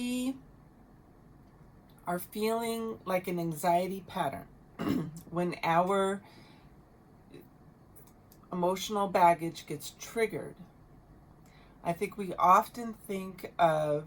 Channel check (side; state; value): both; identical; correlation 1.00